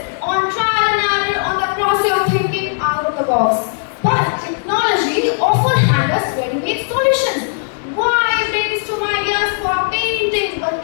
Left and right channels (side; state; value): right; silent; digital silence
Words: on trial and error, on the process of thinking out of the box. But technology often hands us ready-made solutions. Why brainstorm ideas for painting but